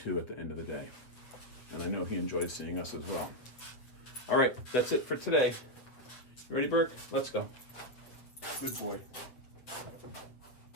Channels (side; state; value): right; late; 8.0 ms